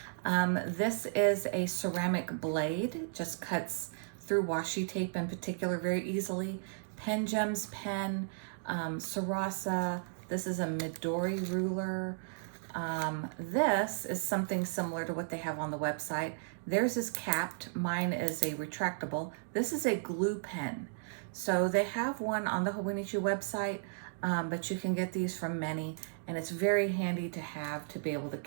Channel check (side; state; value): left; silent; digital silence